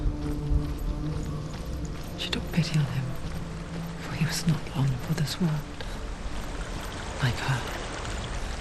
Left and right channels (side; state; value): both; identical; correlation 1.00